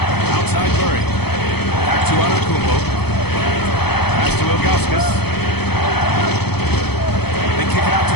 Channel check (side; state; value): right; late; 0.97 ms